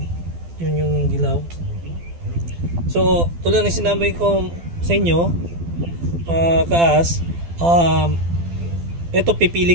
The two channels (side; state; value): left; late; 12 ms